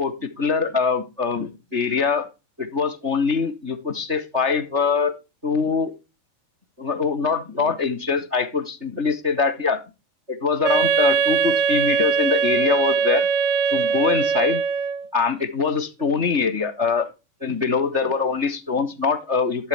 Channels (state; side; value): late; left; 3.3 ms